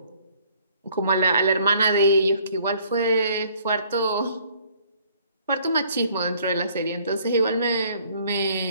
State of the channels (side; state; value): both; inverted; correlation -0.60